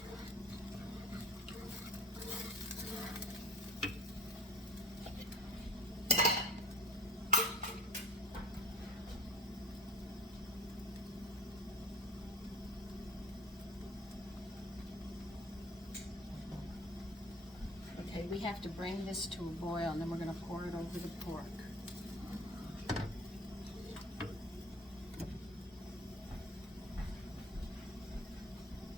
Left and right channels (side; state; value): both; normal; correlation 0.40